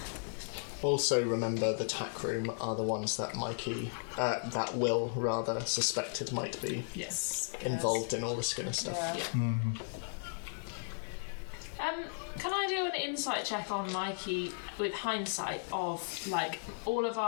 Also remember the tack room are the ones that that Will rather suspected might be Yes. involved in all the Skinner stuff. Yeah. Can I do an insight check on Mikey with hindsight of like all of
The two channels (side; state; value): right; silent; digital silence